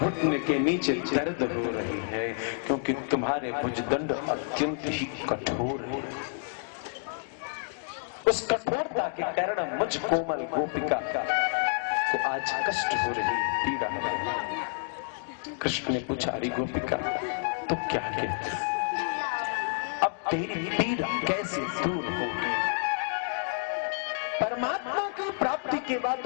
के नीचे दर्द हो रही है, क्योंकि तुम्हारे भुजदंड अत्यंत ही कठोर है। उस कठोरता के कारण मुझ कोमल गोपिका को आज कष्ट हो रही, पीड़ा हो रही। कृष्ण ने पूछा, अरे गोपिका तो क्या कहती, अब तेरी पीड़ा कैसे दूर होगी? परमात्मा की प्राप्ति के बाद,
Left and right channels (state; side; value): silent; right; digital silence